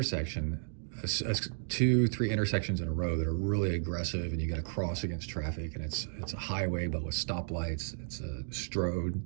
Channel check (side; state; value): left; silent; digital silence